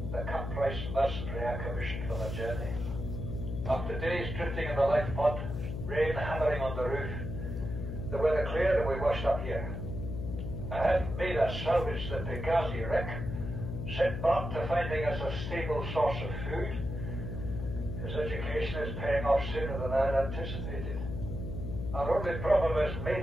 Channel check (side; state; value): left; noise; hum, 5 dB below the sound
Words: the cut-price mercenary I commissioned for the journey. After days drifting in the life pod, rain hammering on the roof, the weather cleared and we washed up here. I had Maida salvage the Pegazi wreck, set Mott to finding us a stable source of food. His education is paying off sooner than I had anticipated. Our only problem is